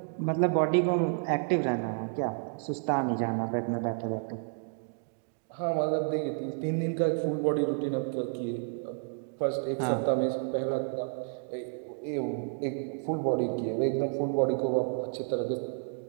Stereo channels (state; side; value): silent; left; 56 dB below the other